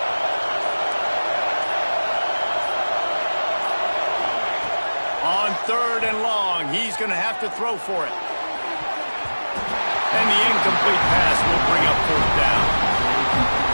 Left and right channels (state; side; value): inverted; both; correlation -1.00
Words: Third and long. He's going to have to throw for it. And the incomplete pass will bring up fourth down.